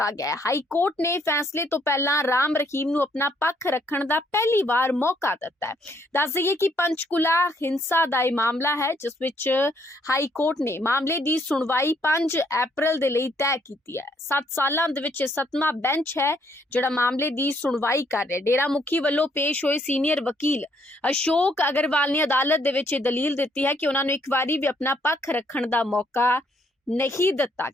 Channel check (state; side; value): normal; both; correlation 0.69